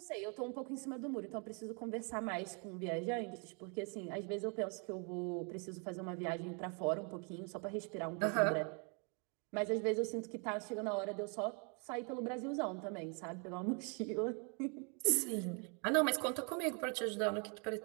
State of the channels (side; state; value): left; quieter; 36.7 dB